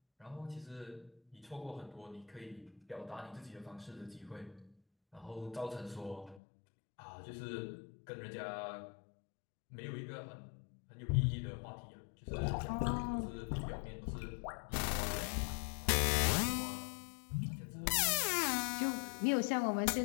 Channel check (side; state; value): right; drops out; at 6.4 s